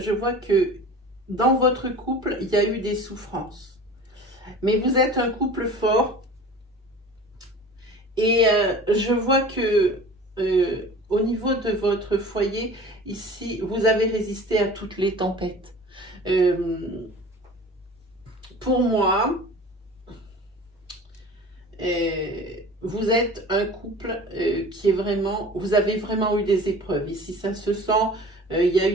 vois que dans votre couple, il y a eu des souffrances. Mais vous êtes un couple fort. Et je vois que au niveau de votre foyer, ici, vous avez résisté à toutes les tempêtes. Pour moi, vous êtes un couple qui est vraiment, vous avez vraiment eu des épreuves. Ici, ça se sent il y a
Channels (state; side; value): normal; both; correlation 0.40